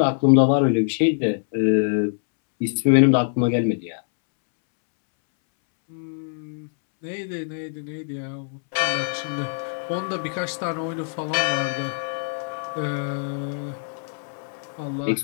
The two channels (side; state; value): right; silent; 63 dB below the other